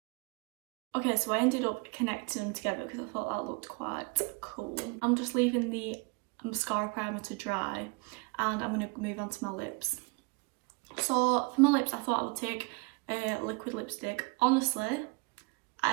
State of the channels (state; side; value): quieter; left; 30.5 dB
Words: Okay, so I ended up connecting them together because I thought that looked quite cool. I'm just leaving the mascara primer to dry and I'm going to move on to my lips. So for my lips, I thought I would take a liquid lipstick. Honestly,